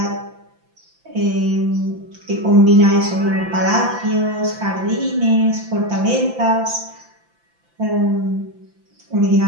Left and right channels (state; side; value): late; left; 5.9 ms